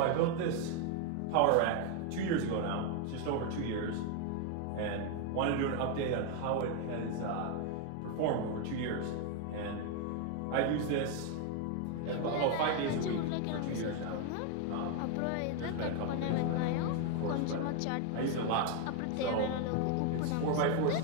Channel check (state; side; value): different; both; correlation 0.01